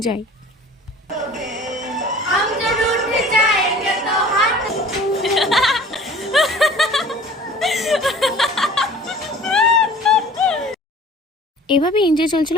এভাবে এনজয় চলছিল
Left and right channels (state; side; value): normal; both; correlation 0.46